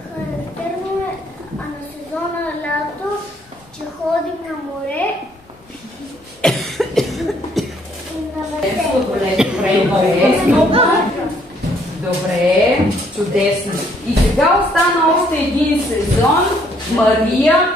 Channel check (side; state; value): both; normal; correlation 0.66